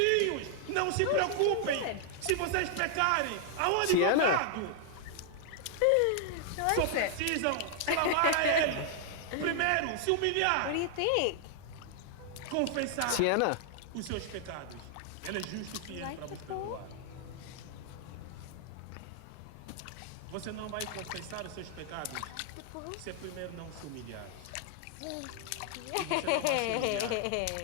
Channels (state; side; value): different; both; correlation 0.00